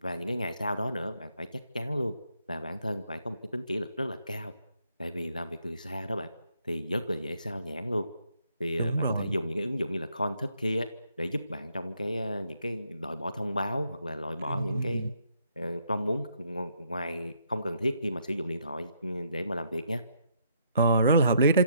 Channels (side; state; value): both; inverted; correlation -0.72